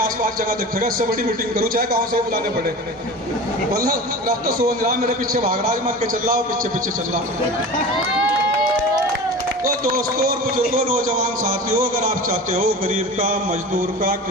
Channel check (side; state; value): both; normal; correlation 0.34